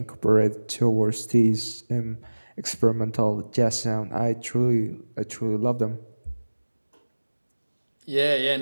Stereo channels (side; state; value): both; inverted; correlation -1.00